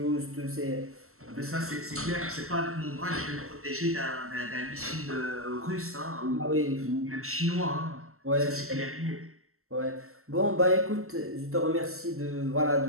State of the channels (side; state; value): left; late; 0.63 ms